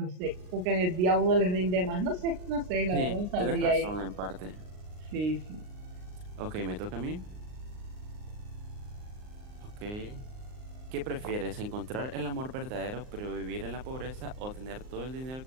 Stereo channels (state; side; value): late; left; 39 ms